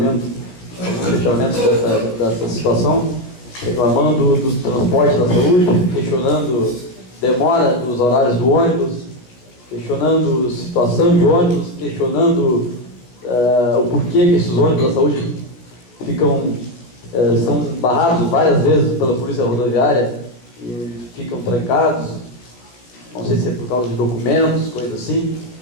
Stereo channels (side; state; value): right; late; 16 ms